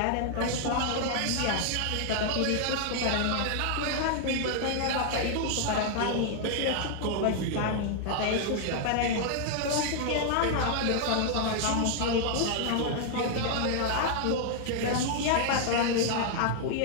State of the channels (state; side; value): different; both; correlation 0.00